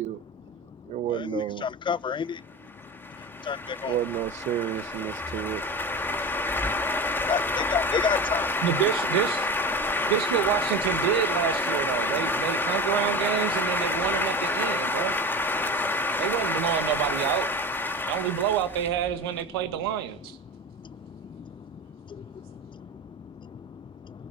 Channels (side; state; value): both; normal; correlation 0.29